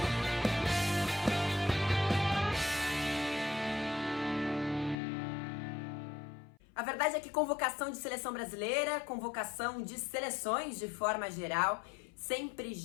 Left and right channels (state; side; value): drops out; right; at 5.0 s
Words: A verdade é que convocação de seleção brasileira, convocação de seleções de forma geral, sempre